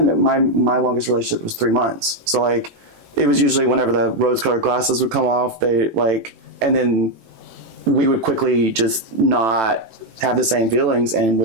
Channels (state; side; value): late; left; 18 ms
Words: my longest relationship was 3 months. So like. It was usually whenever the rose-colored glasses would come off, and then we would quickly just not have the same feelings and